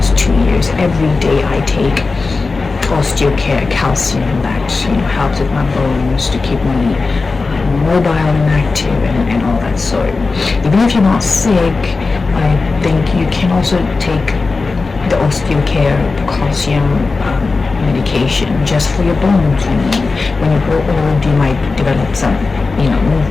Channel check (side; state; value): right; quieter; 4.0 dB